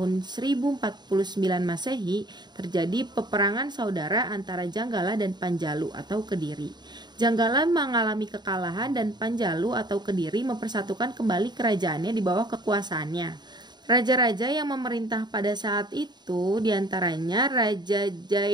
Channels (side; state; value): left; late; 0.21 ms